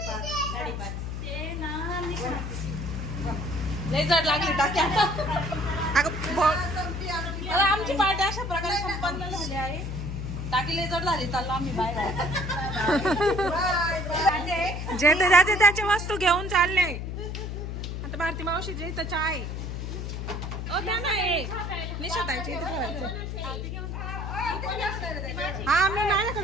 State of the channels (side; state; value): left; noise; hum, 5 dB below the sound